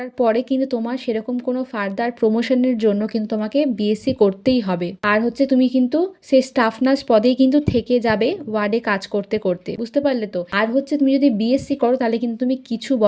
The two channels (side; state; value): both; identical; correlation 1.00